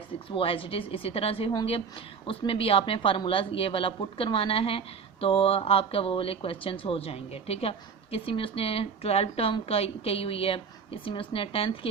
6 वो एज इट इज़ इसी तरह से होंगे। उसमें भी आपने फार्मूला ये वाला पुट करवाना है तो आपका वो वाले क्वेश्चंस हो जाएंगे। ठीक है, किसी में उसने 12 टर्म का कही हुई है, किसी में उसने 10th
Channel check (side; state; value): left; quieter; 6.0 dB